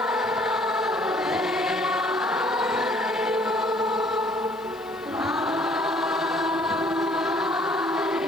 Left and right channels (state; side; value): noise; left; hiss, 27 dB below the sound